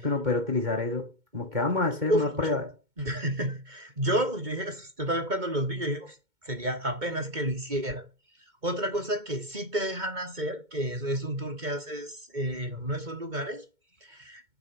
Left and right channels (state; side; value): late; left; 2.2 ms